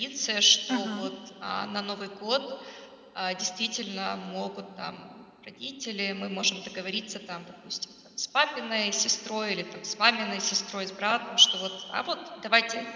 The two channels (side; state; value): both; identical; correlation 1.00